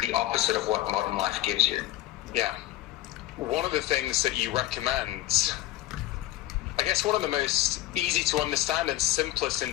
the opposite of what modern life gives you. Yeah. One of the things that you recommend, I guess one of the most easy to understand and simplest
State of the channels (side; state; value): right; quieter; 15.2 dB